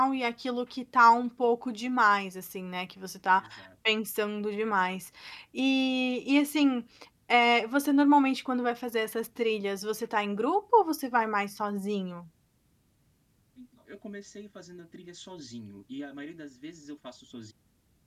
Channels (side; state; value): both; identical; correlation 1.00